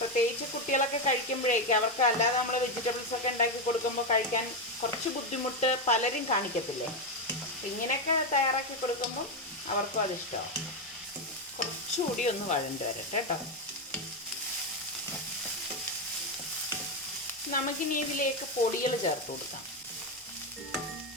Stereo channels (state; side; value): normal; both; correlation 0.08